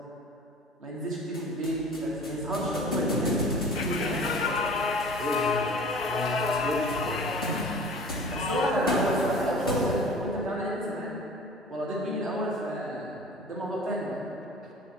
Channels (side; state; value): both; normal; correlation 0.42